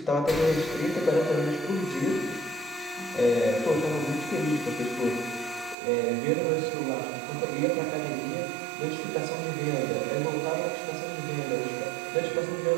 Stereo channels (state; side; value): drops out; left; at 5.8 s